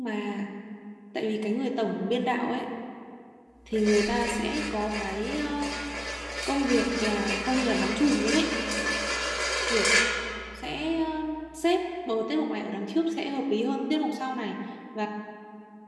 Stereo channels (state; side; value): identical; both; correlation 1.00